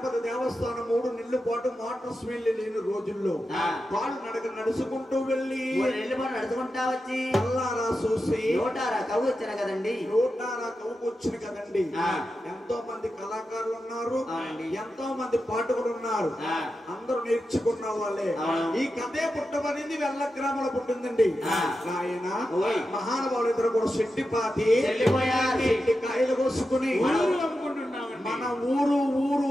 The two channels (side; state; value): both; normal; correlation 0.90